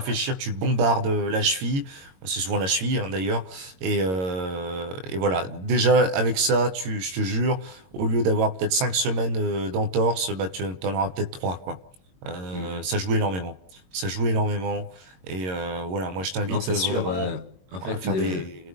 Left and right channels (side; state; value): left; late; 22 ms